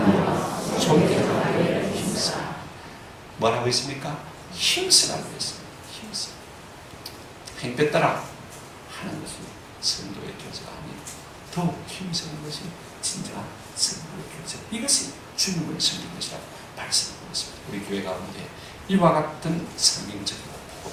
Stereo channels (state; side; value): identical; both; correlation 1.00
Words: 존경하여 힘써. 뭐라고 했습니까? 힘쓰라고 했습니다. 힘써. 행패 따라 하는 것이 성도의 교제가 아니고 더욱 힘쓰는 것이 진정한 성도의 교제. 이것이 주님을 섬기는 것이라고 말씀하고 있습니다. 우리 교회 가운데 이와 같은 성경적이고